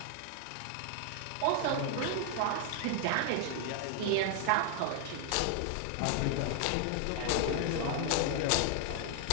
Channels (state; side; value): different; both; correlation 0.00